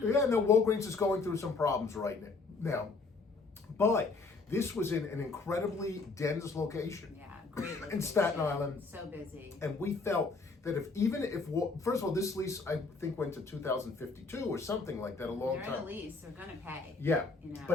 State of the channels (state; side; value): quieter; right; 4.0 dB